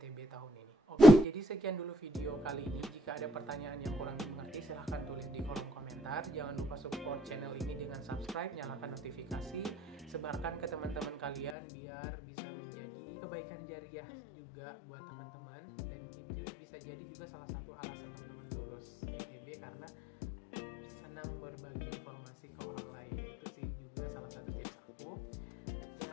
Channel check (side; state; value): right; drops out; at 11.6 s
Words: tahun ini. Oke, jadi sekian dulu video kali ini. Jika ada pertanyaan yang kurang dimengerti, silahkan tulis di kolom komentar. Jangan lupa support channel ini dengan subscribe, nyalakan notifikasi, sebarkan ke teman-teman kalian biar bisa menjadi kebaikan jariah juga buat teman-teman. Dan itu bisa jadi juga salah satu alasan teman-teman lulus YTB karena senang berbagi informasi ke orang lain. Itu sih juga salah satu tips aku.